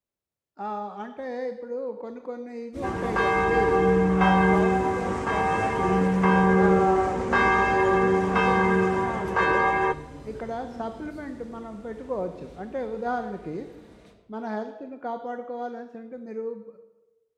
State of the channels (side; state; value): both; identical; correlation 1.00